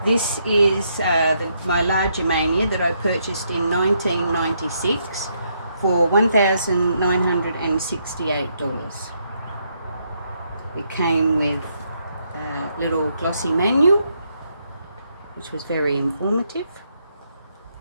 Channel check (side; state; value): both; inverted; correlation -0.76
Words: This is my LaGermania that I purchased in 1996 for $1,968. It came with a little glossy manual, which was very informative.